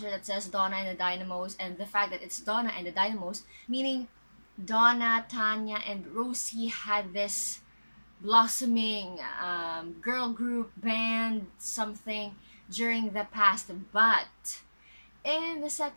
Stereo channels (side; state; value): both; inverted; correlation -1.00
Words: that says Donna and the Dynamos, and the fact that it's Donna and the Dynamos, meaning Donna, Tanya, and Rosie had this blossoming girl group band something during the past. But in the